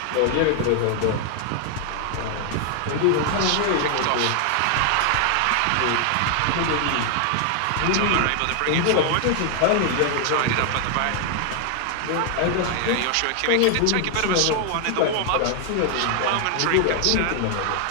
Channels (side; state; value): both; different; correlation 0.00